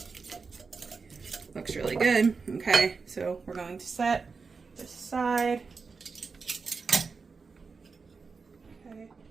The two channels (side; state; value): left; quieter; 4.8 dB